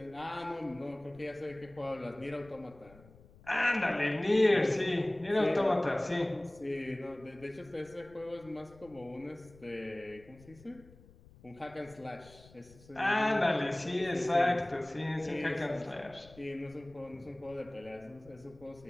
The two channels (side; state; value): left; noise; rumble, 23 dB below the sound